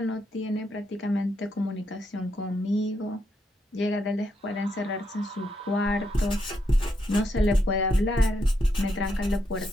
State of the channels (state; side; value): normal; both; correlation 0.79